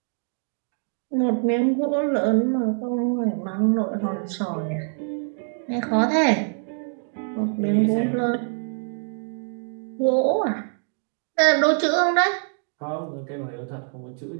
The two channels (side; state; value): left; silent; 62 dB below the other